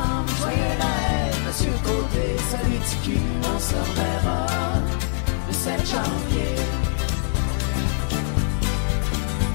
joyeux Noël, Monsieur Côté, salut TQ, on se reverra le 7 janvier.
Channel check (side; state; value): right; silent; digital silence